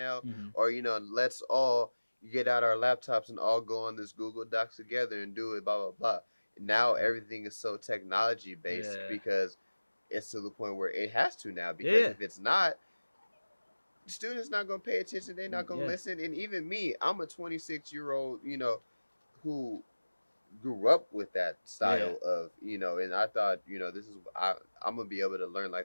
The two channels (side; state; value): both; inverted; correlation -1.00